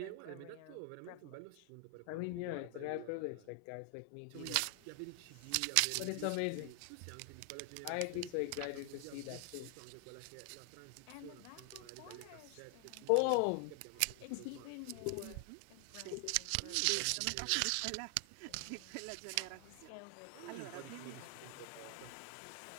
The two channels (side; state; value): both; different; correlation 0.00